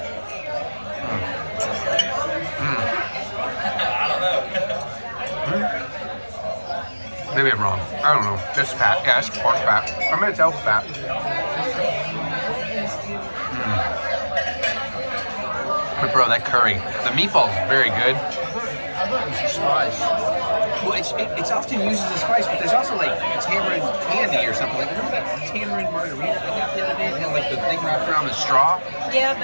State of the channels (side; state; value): both; inverted; correlation -1.00